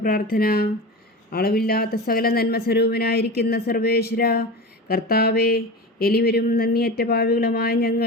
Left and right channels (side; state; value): both; normal; correlation 0.28